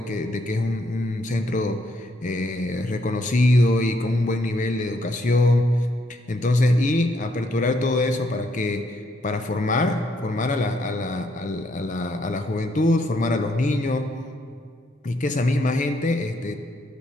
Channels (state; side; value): normal; both; correlation 0.73